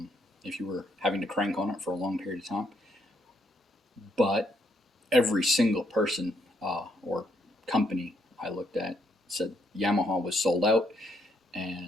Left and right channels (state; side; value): normal; both; correlation 0.73